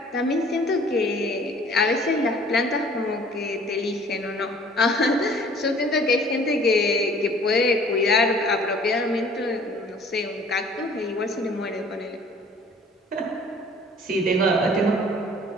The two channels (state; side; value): normal; both; correlation 0.52